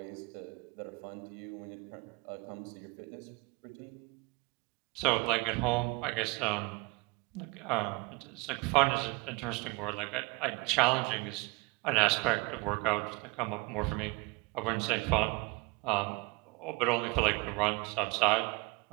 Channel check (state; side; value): quieter; left; 26.8 dB